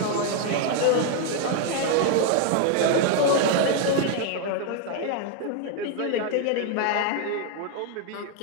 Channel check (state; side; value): different; both; correlation 0.01